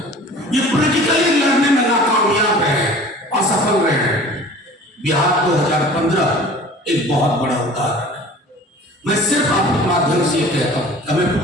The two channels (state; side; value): normal; both; correlation 0.44